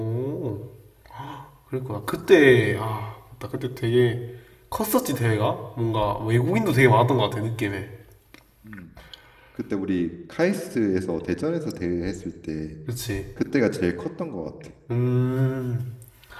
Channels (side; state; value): both; identical; correlation 1.00